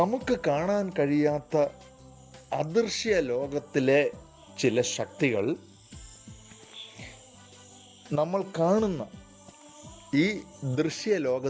കാണാൻ കഴിയാത്ത അദൃശ്യ ലോകത്തിലെ ചില ശക്തികൾ നമ്മൾ കാണുന്ന ഈ ദൃശ്യ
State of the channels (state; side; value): identical; both; correlation 1.00